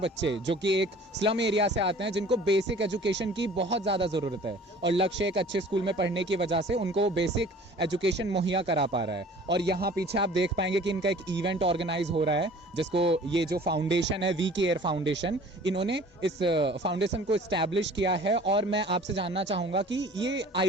जो कि एक स्लम एरिया से आते हैं, जिनको बेसिक एजुकेशन की बहुत ज़्यादा ज़रूरत है, और लक्ष्य एक अच्छे स्कूल में पढ़ने की वजह से उनको बेसिक एजुकेशन मुहैया करा पा रहा है। और यहाँ पीछे आप देख पाएंगे कि इनका एक इवेंट ऑर्गेनाइज हो रहा है, जिसको ये जो फाउंडेशन है, वी केयर फाउंडेशन, इन्होंने इस फाउंडेशन को इस्टेब्लिश किया है। और मैं आपसे जानना चाहूँगा कि ये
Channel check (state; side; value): normal; both; correlation 0.48